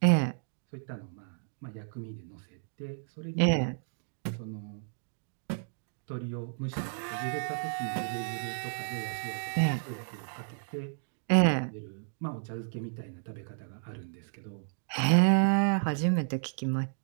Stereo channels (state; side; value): silent; left; digital silence